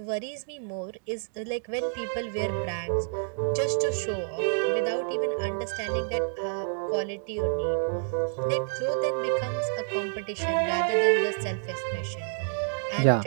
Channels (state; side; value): silent; left; digital silence